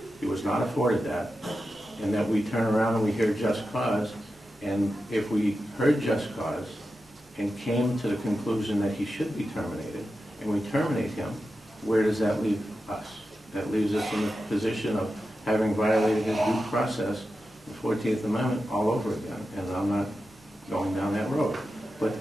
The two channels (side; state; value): both; normal; correlation 0.91